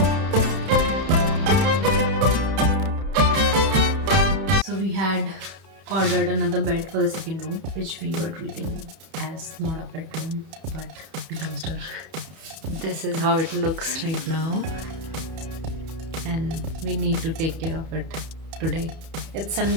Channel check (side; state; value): left; late; 31 ms